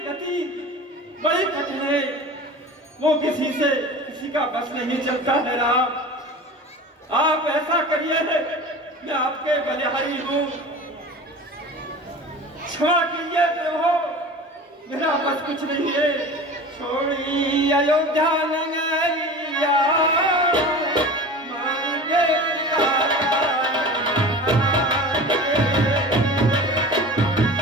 गति बड़ी कठिन है, वो किसी का बस नहीं चलता है। राम, आप ऐसा करिए, मैं आपके बलिहारी हूँ, क्षमा कीजिए प्रभु, मेरा बस कुछ नहीं है। छोड़ी अयोध्या नगरिया मांगे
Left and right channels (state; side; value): normal; both; correlation 0.36